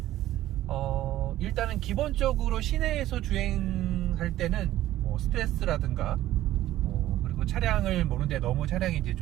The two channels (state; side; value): quieter; left; 14.2 dB